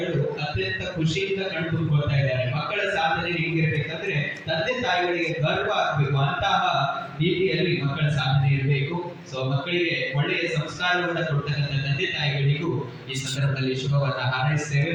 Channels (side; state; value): both; identical; correlation 1.00